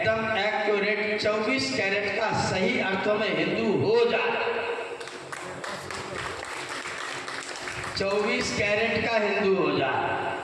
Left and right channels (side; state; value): both; identical; correlation 1.00